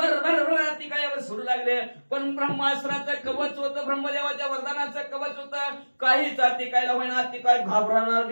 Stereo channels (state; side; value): inverted; both; correlation -1.00